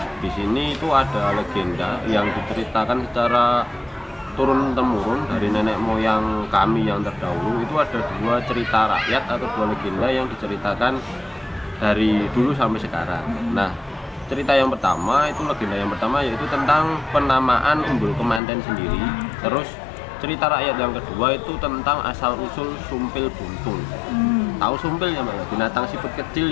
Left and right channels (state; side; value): drops out; right; at 18.4 s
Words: di sini itu ada legenda yang diceritakan secara turun temurun dari nenek moyang kami yang terdahulu. Itu ada dua cerita rakyat atau dua legenda yang diceritakan dari dulu sampai sekarang. Nah, cerita yang pertama itu legenda yang pertama yaitu tentang penamaan Umbul Kemanten sendiri. Terus cerita rakyat yang kedua itu tentang asal usul sumpil buntung. Tahu sumpil ya, Mbak? Binatang siput kecil